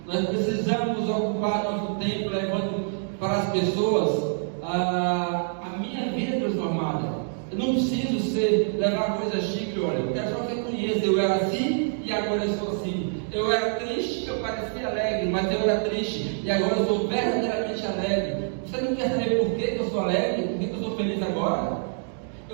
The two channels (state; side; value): silent; left; digital silence